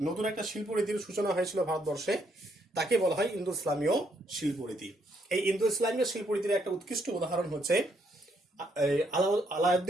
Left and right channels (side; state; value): both; normal; correlation 0.73